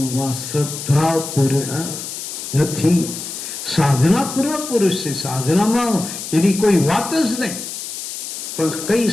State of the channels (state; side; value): noise; left; hiss, 8 dB below the sound